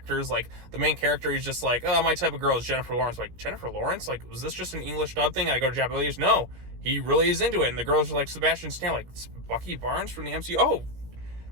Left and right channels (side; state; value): left; late; 17 ms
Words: Like, the main character is just like, oh, my type of girl is Jennifer Lawrence. Like, Jennifer Lawrence? Like, was this just an English dub thing? I go to Japanese? No, he really is into it. And the girls are like Sebastian Stan, like Bucky Barnes from the MCU. Oh,